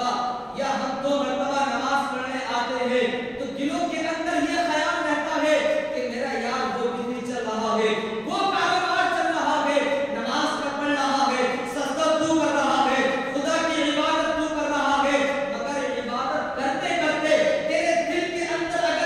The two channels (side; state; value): both; identical; correlation 1.00